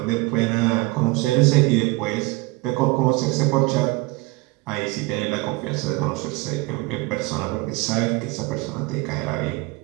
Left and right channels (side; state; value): left; quieter; 23.6 dB